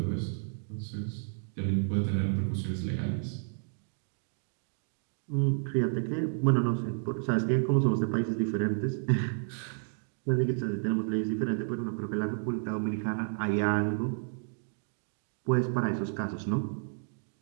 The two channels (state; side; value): silent; left; digital silence